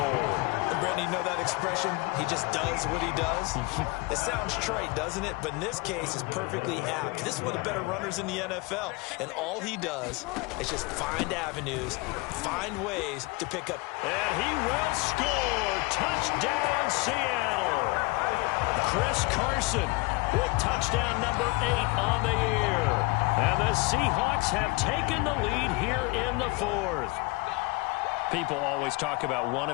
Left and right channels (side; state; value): right; quieter; 25.0 dB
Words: And Brandon, you know that expression? He just does what he does. It sounds trite, doesn't it? But in this case, it's perfectly apt. This is one of the better runners in the NFL. And all he does is just find avenues, find ways to pick up. And he will score. Touchdown, Seattle. Chris Carson with touchdown number 8 on the year. And the Seahawks have taken the lead here in the 4th. People always talk about one of